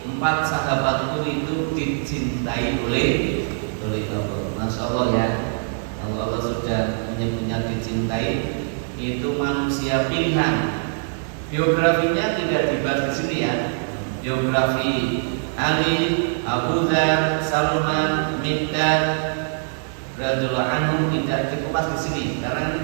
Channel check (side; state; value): left; silent; digital silence